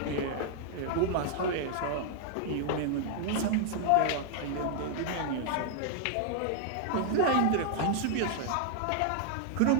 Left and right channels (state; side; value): different; both; correlation -0.01